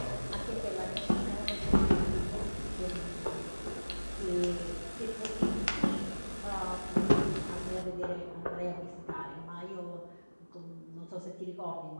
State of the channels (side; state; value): both; inverted; correlation -1.00